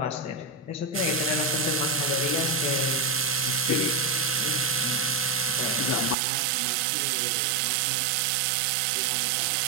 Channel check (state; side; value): drops out; left; at 6.2 s